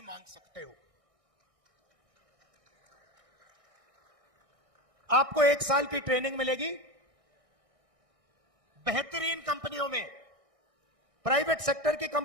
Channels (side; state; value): left; late; 1.6 ms